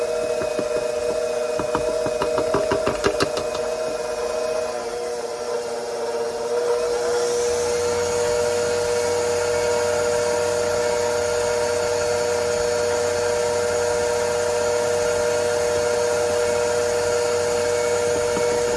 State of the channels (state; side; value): identical; both; correlation 1.00